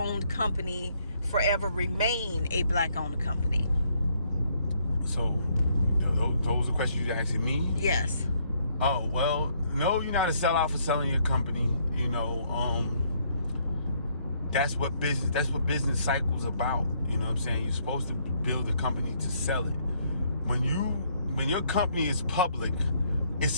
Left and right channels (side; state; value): both; inverted; correlation -0.69